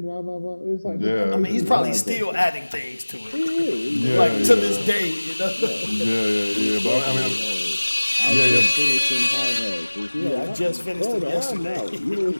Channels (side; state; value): both; inverted; correlation -1.00